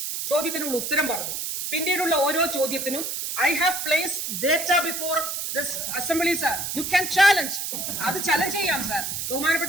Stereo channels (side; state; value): right; noise; hiss, 3 dB below the sound